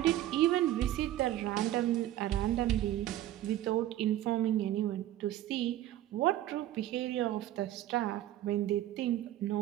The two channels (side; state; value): left; quieter; 13.4 dB